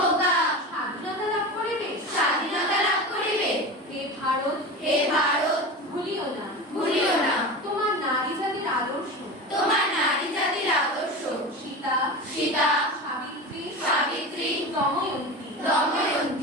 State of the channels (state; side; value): normal; both; correlation 0.28